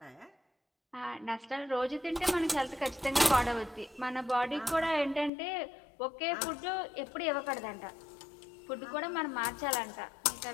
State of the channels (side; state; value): right; drops out; at 5.3 s